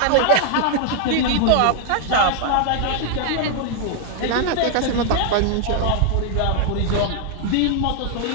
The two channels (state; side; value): different; both; correlation 0.00